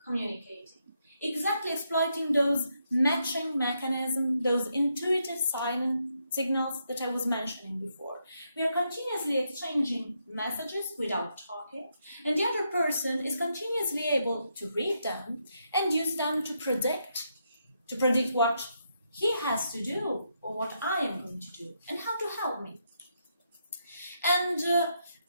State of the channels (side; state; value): both; inverted; correlation -0.79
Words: communicating, exactly exploiting those matching mechanisms, those intuitive signals that I was mentioning before. We are continuously exchanging messages without talking, and the other person is continuously able to read them and use them to predict what he has to do or what I am going to do and how to help me. And